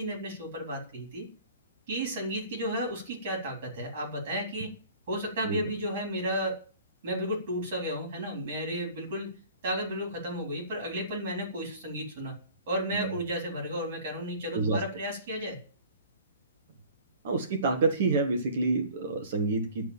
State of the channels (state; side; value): inverted; both; correlation -0.47